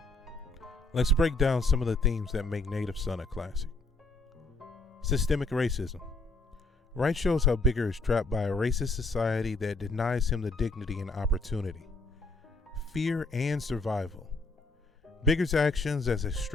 Let's break down some of the themes that make Native Son a classic. Systemic racism. Wright shows how Bigger is trapped by a racist society that denies him the dignity and opportunity. Fear and survival. Bigger's actions, as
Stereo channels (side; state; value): right; quieter; 3.0 dB